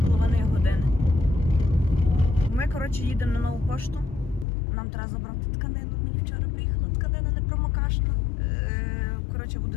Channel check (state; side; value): drops out; right; at 4.5 s